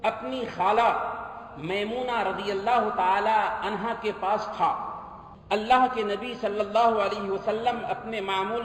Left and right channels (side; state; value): both; identical; correlation 1.00